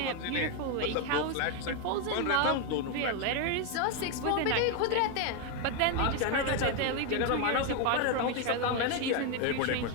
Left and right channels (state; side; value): different; both; correlation 0.01